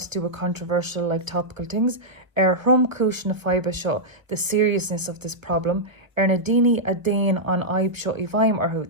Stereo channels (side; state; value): left; late; 1.1 ms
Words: to do with controversial, like topical things. Hrum Kush na Fiba Show, the seriousness of this problem. Nadini Adain on Aib Show Ivaim Arhu,